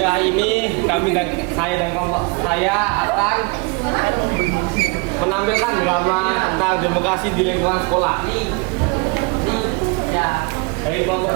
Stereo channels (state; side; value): quieter; left; 29.3 dB